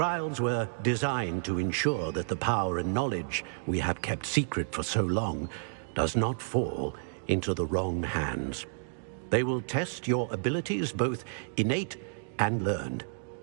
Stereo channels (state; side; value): silent; left; digital silence